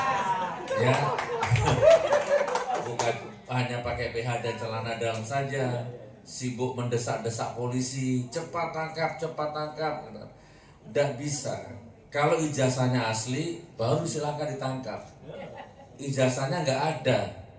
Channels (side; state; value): both; identical; correlation 1.00